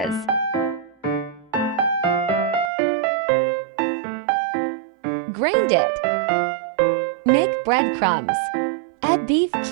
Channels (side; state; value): left; drops out; at 2.7 s